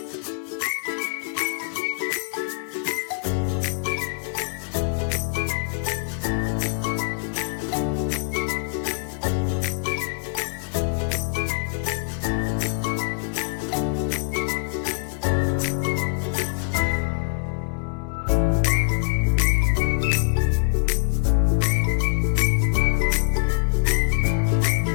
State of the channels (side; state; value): right; silent; digital silence